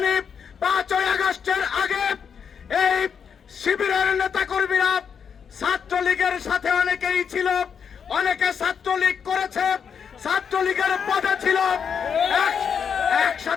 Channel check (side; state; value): right; quieter; 7.0 dB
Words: 5ই আগস্টের আগে এই শিবিরের নেতাকর্মীরা ছাত্রলীগের সাথে অনেকেই ছিল, অনেকে ছাত্রলীগ করেছে, ছাত্রলীগের পদে ছিল,